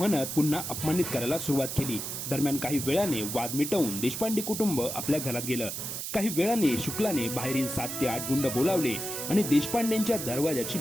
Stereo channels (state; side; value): noise; right; hiss, 5 dB below the sound